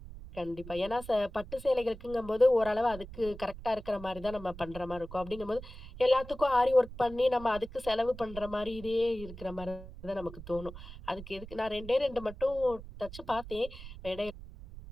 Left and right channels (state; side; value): noise; right; rumble, 14 dB below the sound